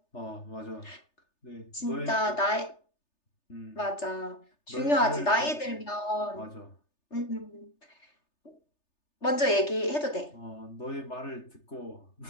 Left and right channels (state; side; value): late; right; 3.3 ms